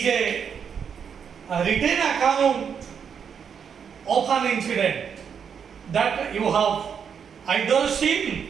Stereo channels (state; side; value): quieter; left; 7.2 dB